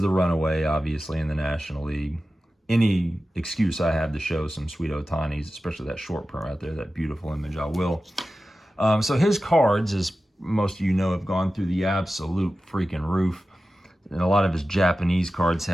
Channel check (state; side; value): normal; both; correlation 0.94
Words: the runaway, obviously, in the National League. Any excuse I have to show some sweet Ohtanis, especially that short print right there, that beautiful image, I will. So his cards, as most of you know, have gone through the absolute freaking roof. And a lot of his Japanese cards